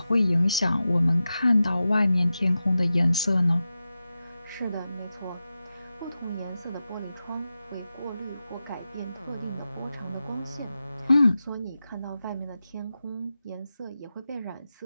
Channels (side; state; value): both; inverted; correlation -0.92